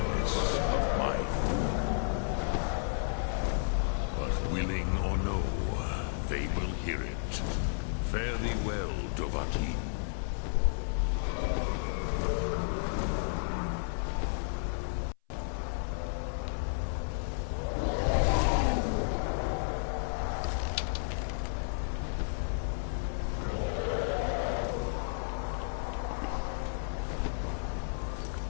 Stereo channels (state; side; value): silent; right; 56 dB below the other